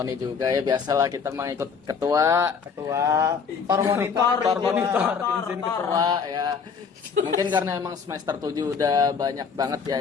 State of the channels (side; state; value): right; quieter; 6.0 dB